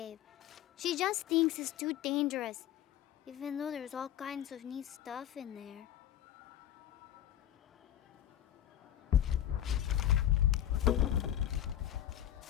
She just thinks it's too dangerous, even though there's all kinds of neat stuff in there.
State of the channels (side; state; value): right; quieter; 11.6 dB